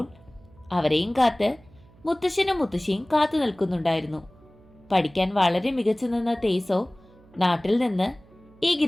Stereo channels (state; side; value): noise; right; hum, 26 dB below the sound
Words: അവരെയും കാത്ത് മുത്തശ്ശനും മുത്തശ്ശിയും കാത്തു നിൽക്കുന്നുണ്ടായിരുന്നു. പഠിക്കാൻ വളരെ മികച്ചു നിന്ന തേസോ നാട്ടിൽ നിന്ന് ഈ